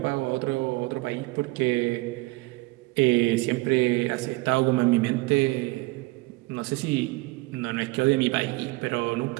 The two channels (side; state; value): left; quieter; 22.2 dB